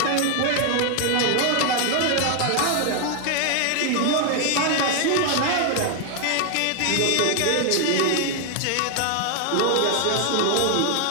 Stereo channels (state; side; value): different; both; correlation 0.00